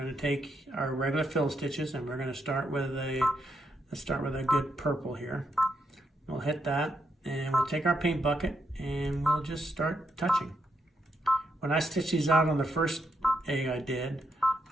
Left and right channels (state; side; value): normal; both; correlation 0.80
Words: to take our regular fill stitches, and we're going to start with a good purple here. We'll hit that, and we'll take our paint bucket, and we'll just start touching. When I stitched these out on the first egg I did,